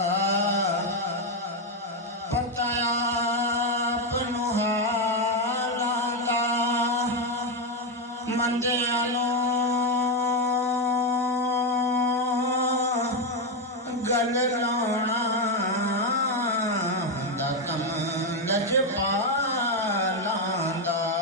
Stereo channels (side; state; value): both; normal; correlation 0.06